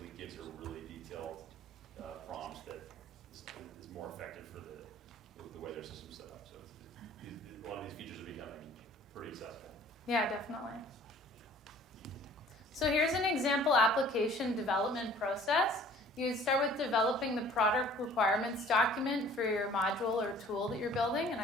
gives you a really detailed prompt that is more effective for the way their system's set up. So a lot of these features are becoming pretty accessible. Yeah, definitely. So here's an example application development process. You would start with developing the product requirements document for your module or tool that you're building, and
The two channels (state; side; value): normal; both; correlation 0.51